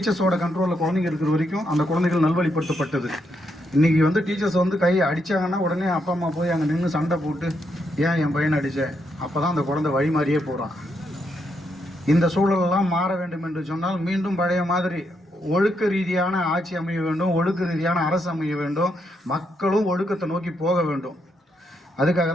கண்ட்ரோலில் குழந்தைங்க இருக்கிற வரைக்கும் அந்த குழந்தைகள் நல்வழிப்படுத்தப்பட்டது. இன்றைக்கி டீச்சர்ஸ் கையை அடித்தாங்கன்னா உடனே அப்பா அம்மா போய் அங்கே நின்று சண்டை போட்டு ஏன் என் பையனை அடித்தேன், அப்போ தான் அந்த குழந்தை வழி மாறியே போகிறான். இந்த சூழலெல்லாம் மாற வேண்டும் என்று சொன்னால் மீண்டும் பழைய மாதிரி ஒழுக்க ரீதியான ஆட்சி அமைய வேண்டும், ஒழுக்க ரீதியான அரசு அமைய வேண்டும், மக்களும் ஒழுக்கத்தை நோக்கி போக வேண்டும். அதுக்காக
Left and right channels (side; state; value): both; normal; correlation 0.79